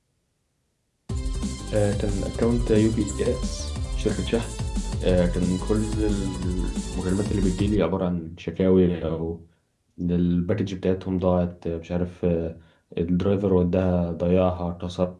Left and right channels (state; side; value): identical; both; correlation 1.00